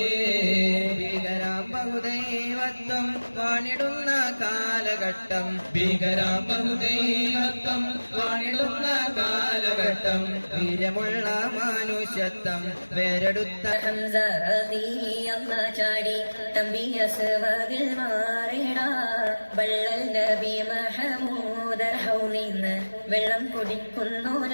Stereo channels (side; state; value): both; inverted; correlation -1.00